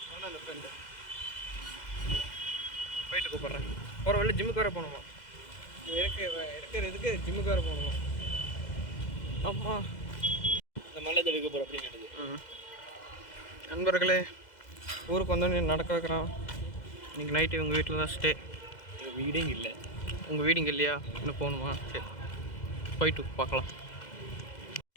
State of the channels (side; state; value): right; late; 2.0 ms